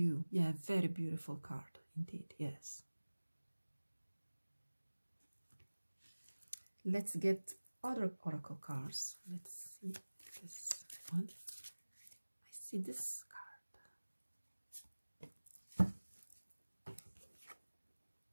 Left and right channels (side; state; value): both; inverted; correlation -1.00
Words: Yeah, very beautiful card indeed, yes. Let's get other oracle cards. Let's see this one. I see this card.